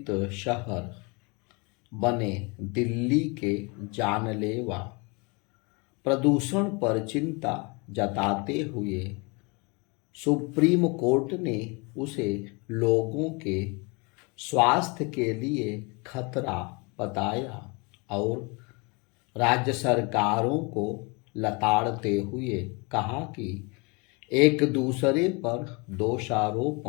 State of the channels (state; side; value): quieter; right; 29.7 dB